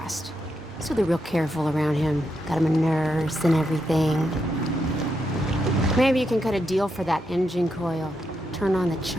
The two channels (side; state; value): both; normal; correlation 0.83